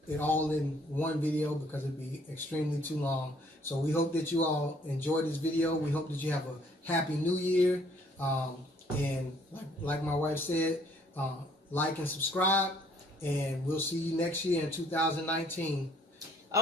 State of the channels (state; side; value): normal; both; correlation 0.62